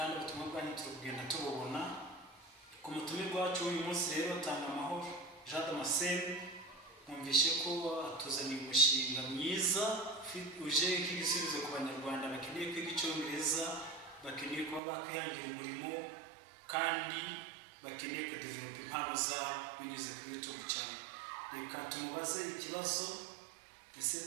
ubutumwa bwanyu turi kugenda tububona. Ku mutumirwa wacu uyu munsi rero TANGAJ, mwumvishe ko atuzaniye umushinga mwiza uje nk'igisubizo ku banyarwanda bakeneye kwiga Icyongereza, bakeneye kuba bakwihangira umurimo kandi bakeneye kudevelop impano zabo binyuze kuri YouTube channel. Reka tumubaze ikibazo,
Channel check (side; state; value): left; drops out; at 14.8 s